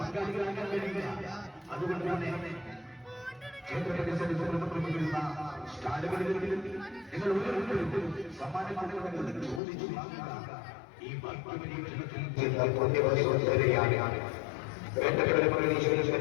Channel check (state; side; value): drops out; right; at 9.6 s